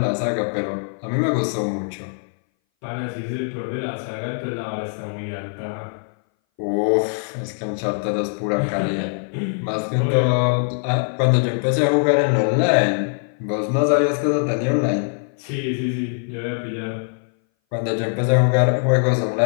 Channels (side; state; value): right; silent; 60 dB below the other